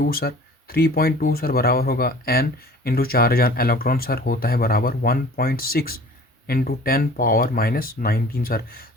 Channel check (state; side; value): normal; both; correlation 0.46